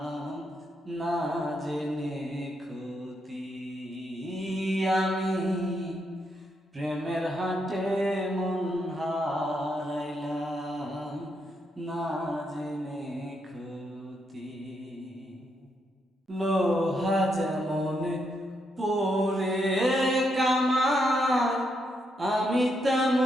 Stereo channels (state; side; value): normal; both; correlation 0.79